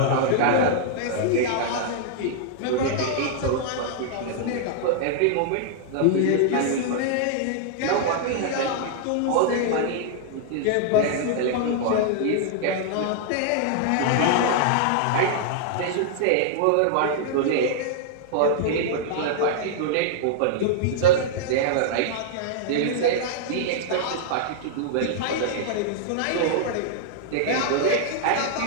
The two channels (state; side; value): different; both; correlation -0.01